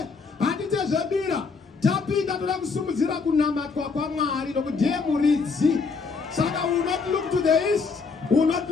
hatite zvedira. Tapinda toda kusumudzira kunamatwa kwaMwari nokudiye muridzi. Saka we will not look to the east, we will not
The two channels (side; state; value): right; quieter; 4.8 dB